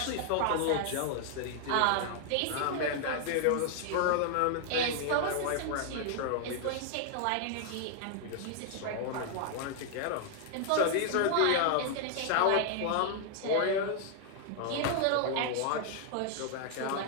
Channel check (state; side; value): different; both; correlation 0.00